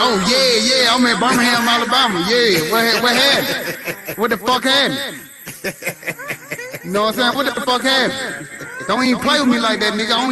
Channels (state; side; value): identical; both; correlation 1.00